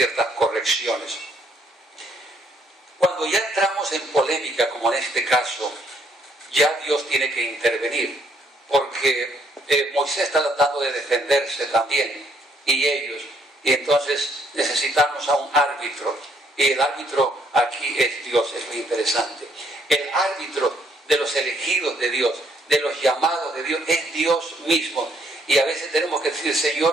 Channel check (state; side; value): normal; both; correlation 0.68